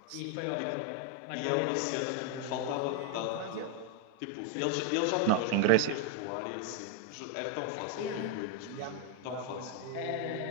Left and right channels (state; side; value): different; both; correlation 0.01